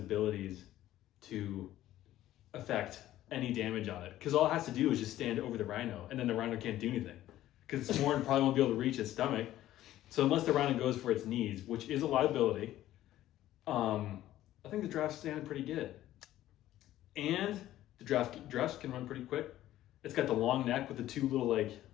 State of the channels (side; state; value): right; quieter; 13.9 dB